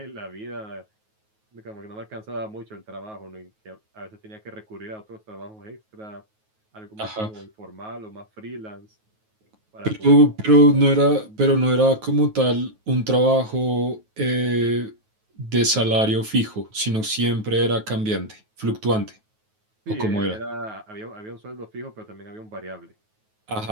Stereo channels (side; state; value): left; late; 9.3 ms